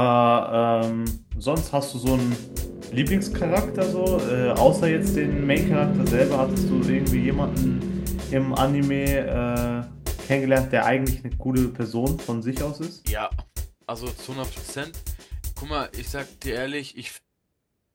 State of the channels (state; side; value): identical; both; correlation 1.00